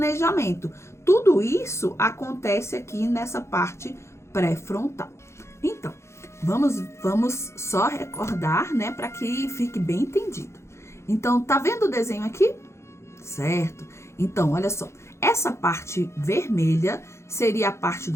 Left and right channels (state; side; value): late; right; 0.13 ms